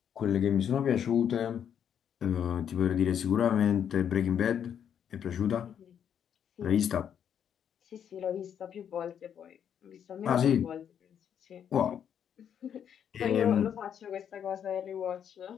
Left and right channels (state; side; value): quieter; right; 8.7 dB